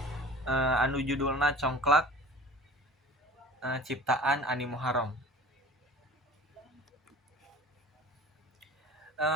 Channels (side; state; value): both; normal; correlation 0.41